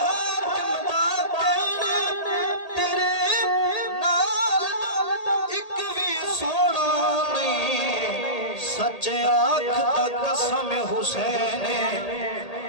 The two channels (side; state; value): right; late; 1.8 ms